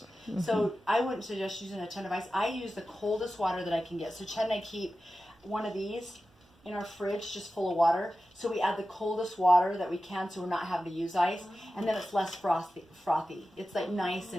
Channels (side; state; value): both; normal; correlation 0.94